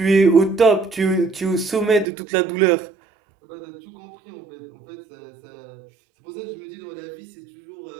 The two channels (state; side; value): drops out; left; at 2.1 s